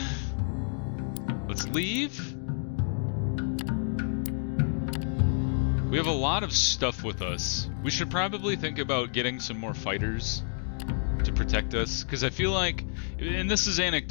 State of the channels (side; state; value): right; silent; digital silence